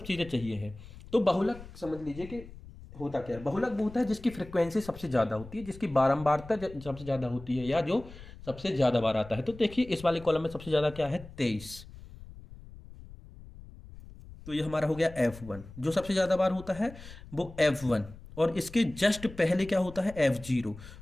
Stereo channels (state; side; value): noise; left; rumble, 17 dB below the sound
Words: चीज़ें चाहिए हैं। तो बहुलक समझ लीजिए कि होता क्या है। बहुलक वो होता है जिसकी फ्रिक्वेंसी सबसे ज़्यादा होती है, जिसकी बारंबारता सबसे ज़्यादा होती है, या जो सबसे ज़्यादा बार आता है। तो देखिए इस वाले कॉलम में सबसे ज़्यादा क्या है, 23। तो ये हमारा हो गया F1। जो सबसे ज़्यादा बार होता है वो F1, और इसके जस्ट पहले क्या होता है F0,